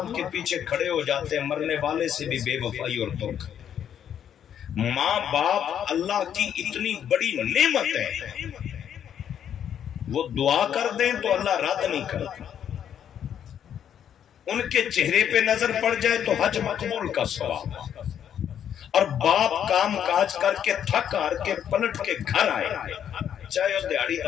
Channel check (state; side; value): quieter; right; 9.3 dB